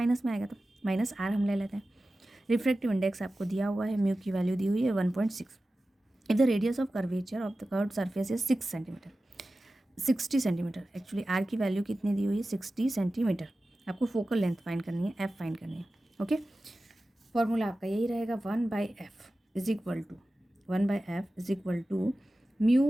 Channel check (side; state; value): both; normal; correlation 0.95